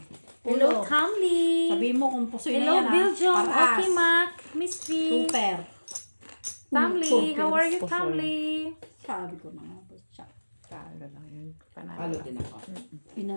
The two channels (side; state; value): both; inverted; correlation -1.00